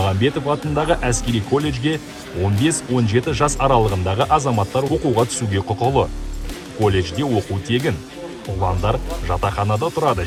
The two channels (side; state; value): both; identical; correlation 1.00